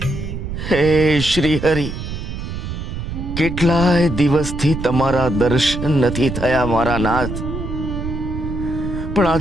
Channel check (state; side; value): noise; right; rumble, 6 dB below the sound